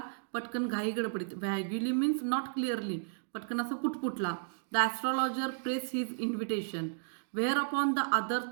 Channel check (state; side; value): silent; left; digital silence